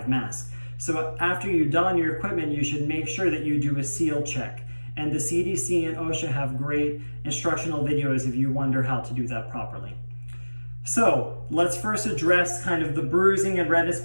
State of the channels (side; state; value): both; inverted; correlation -1.00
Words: mask. So after you don your equipment, you should make sure that you do a seal check. And the CDC and OSHA have great instructional videos if you wonder how to do that properly. So let's first address kind of the bruising and redness